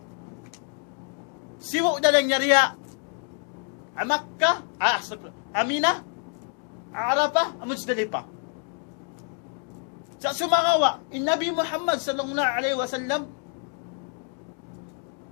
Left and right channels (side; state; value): right; quieter; 40.0 dB